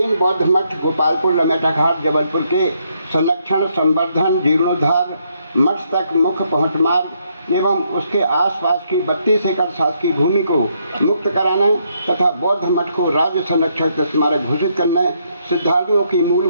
बौद्ध मठ गोपालपुर लमेटा घाट जबलपुर के संरक्षण, संवर्धन, जीर्णोद्धार, मठ तक मुख्य पहुंच मार्ग एवं उसके आसपास की 32 एकड़ शासकीय भूमि को मुक्त कराने तथा बौद्ध मठ को राज्य संरक्षित स्मारक घोषित करने, श्रद्धालुओं की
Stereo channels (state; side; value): inverted; both; correlation -0.74